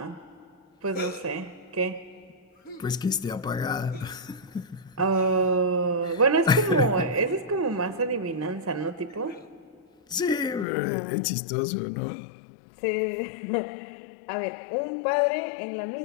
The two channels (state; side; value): drops out; right; at 10.7 s